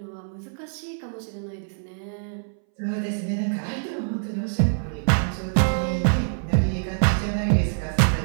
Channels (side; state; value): left; silent; 62 dB below the other